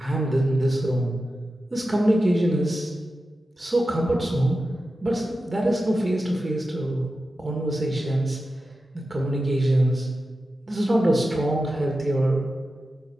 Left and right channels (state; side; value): normal; both; correlation 0.92